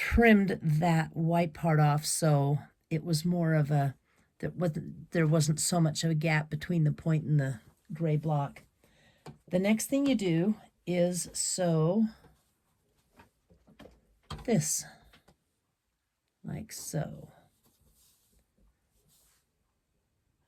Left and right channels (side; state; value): both; identical; correlation 1.00